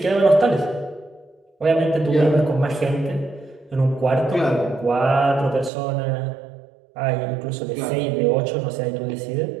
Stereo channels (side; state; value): left; drops out; at 5.7 s